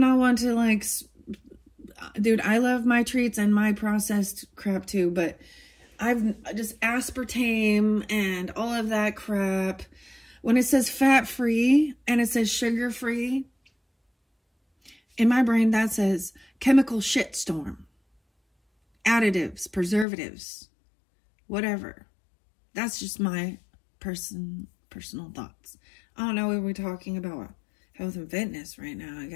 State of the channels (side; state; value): right; drops out; at 20.1 s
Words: one to like, dude, I love my treats and my processed crap too, but I've just aspartame and all of that crap. When it says fat-free and it says sugar-free, in my brain that says chemical shitstorm, additives, preservatives, whatever. That's just my personal thoughts. I don't know if we're talking about health and fitness right now